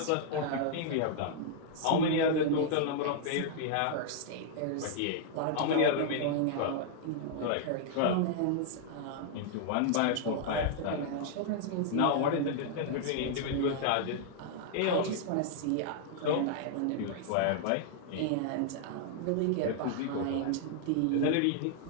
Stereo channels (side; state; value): both; different; correlation -0.01